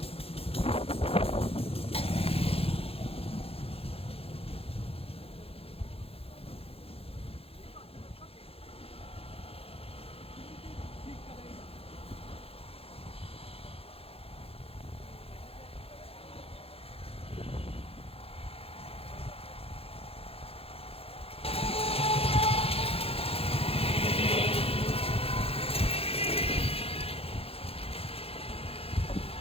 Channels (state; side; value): late; right; 0.28 ms